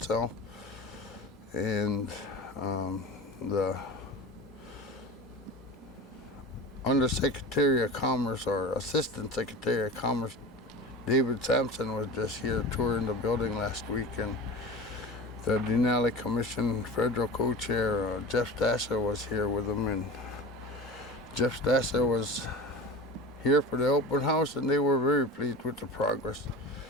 and the Undersecretary of Commerce, or Assistant Secretary of Commerce, David Sampson, was just here touring the building last week, and the Denali Commission Federal Co-Chair Jeff Stasser was here with him, and Jeff Stasser was here for the open house, and they were very pleased with the progress.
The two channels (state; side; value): normal; both; correlation 0.32